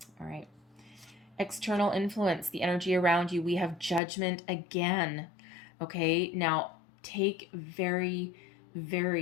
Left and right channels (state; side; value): drops out; right; at 4.0 s